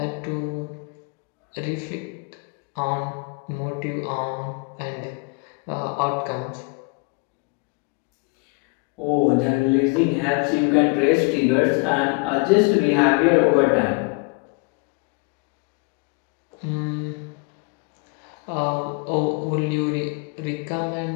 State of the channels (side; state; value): right; quieter; 31.1 dB